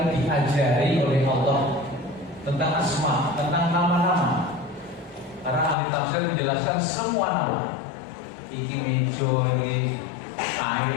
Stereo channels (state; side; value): drops out; right; at 5.8 s